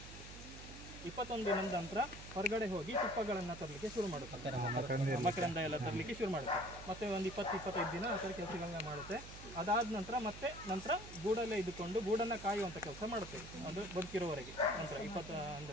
21 ದಿನದ ನಂತರ ಹೊರಗಡೆ ಹೋಗಿ ತುಪ್ಪಗಳನ್ನು ತರಲಿಕ್ಕೆ ಶುರು ಮಾಡುತ್ತೆ, ಮಕರಂದ ಎಲ್ಲ ತರಲಿಕ್ಕೆ ಶುರು ಮಾಡುತ್ತೆ. ಮತ್ತೆ ಒಂದು 20-25 ದಿನ ಆ ಥರ ಕೆಲಸಗಳನ್ನ ಮಾಡುತ್ತೆ. ಅದಾದ ನಂತರ ಗೂಡಲ್ಲೇ ಇದ್ದುಕೊಂಡು ಗೂಡನ್ನು ಕಾಯುವಂಥ ಕೆಲಸ ಮಾಡುತ್ತೆ, ಅದು ಬದುಕಿರೋವರೆಗೆ. ನಂತರ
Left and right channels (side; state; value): right; noise; hum, 13 dB below the sound